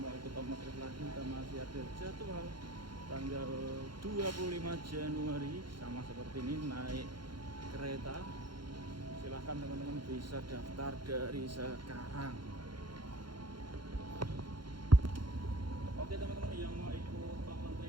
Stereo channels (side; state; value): left; late; 0.72 ms